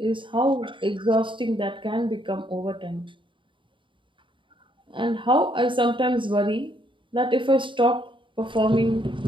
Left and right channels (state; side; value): late; left; 0.24 ms